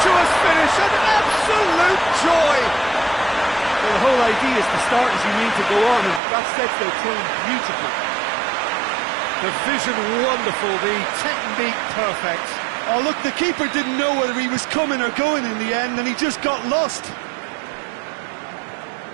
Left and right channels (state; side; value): drops out; left; at 6.2 s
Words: finish, an absolute joy! Well, the whole idea is to start as you need to go on, and that sets their tone beautifully. The vision wonderful, the technique perfect. Oh, look, the keeper didn't know whether he was coming or going in the end, and he just got lost.